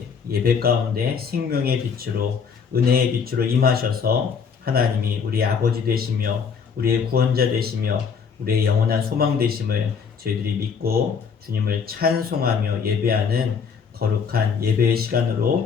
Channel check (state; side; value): quieter; right; 6.2 dB